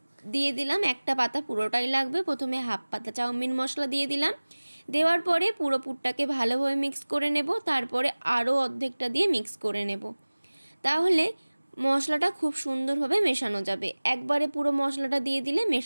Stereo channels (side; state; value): both; inverted; correlation -1.00